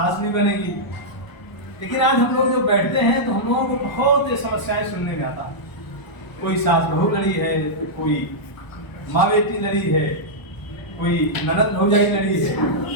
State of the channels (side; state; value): right; late; 1.0 ms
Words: भी बनेगी। लेकिन आज हम लोग जो बैठते हैं तो हम लोगों को बहुत समस्याएं सुनने में आता है। कोई सास बहू लड़ी है, कोई माँ बेटी लड़ी है, कोई ननद भौजाई लड़ी है।